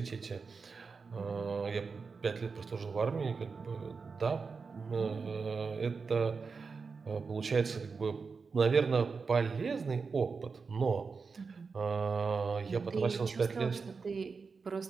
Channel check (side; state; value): left; quieter; 4.9 dB